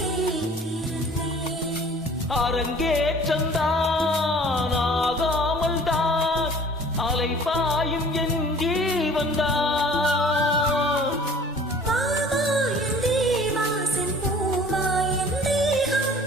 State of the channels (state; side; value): normal; both; correlation 0.49